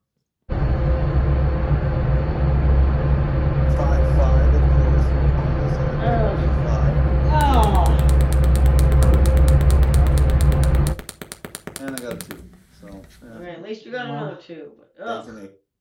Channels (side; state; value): both; identical; correlation 1.00